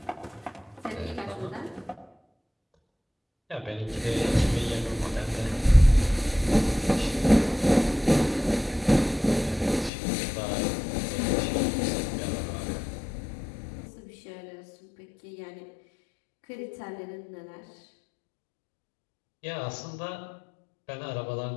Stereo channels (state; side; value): drops out; right; at 9.9 s